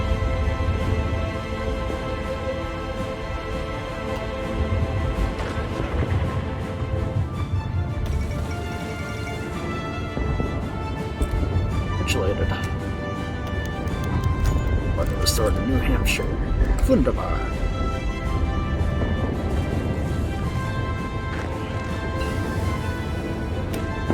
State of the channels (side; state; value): both; identical; correlation 1.00